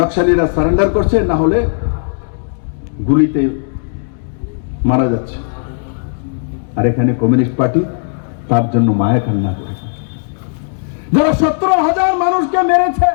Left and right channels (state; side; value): silent; right; digital silence